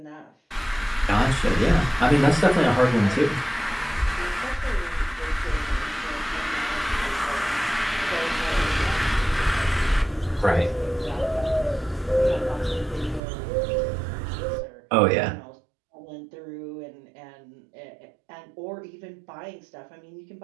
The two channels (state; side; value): drops out; left; at 13.2 s